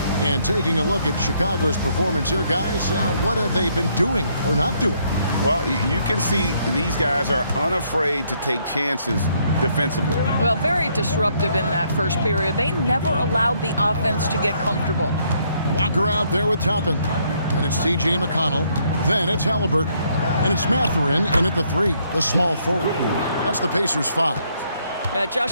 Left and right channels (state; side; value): inverted; both; correlation -0.70